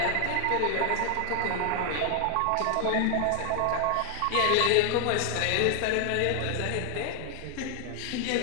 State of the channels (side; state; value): both; different; correlation 0.00